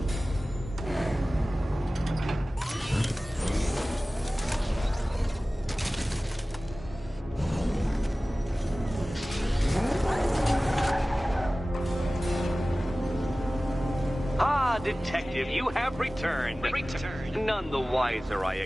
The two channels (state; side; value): normal; both; correlation 0.97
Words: Detective, you have returned. None the wiser, I